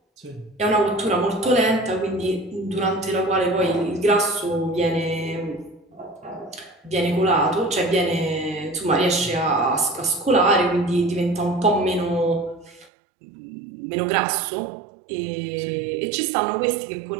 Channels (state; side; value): drops out; left; at 12.9 s